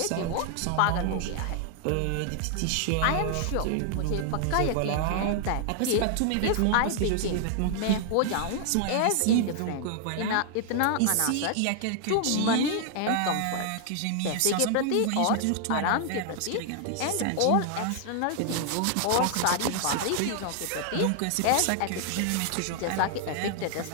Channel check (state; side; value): different; both; correlation 0.00